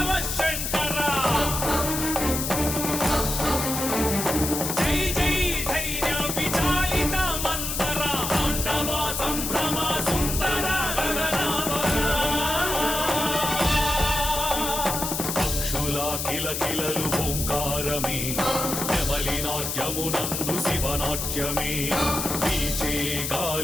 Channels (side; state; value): left; noise; hiss, 3 dB below the sound